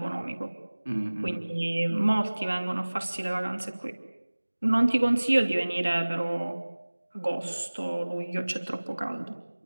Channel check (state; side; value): inverted; both; correlation -1.00